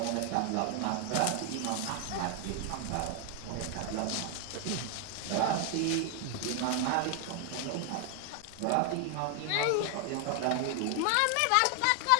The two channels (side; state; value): both; different; correlation 0.00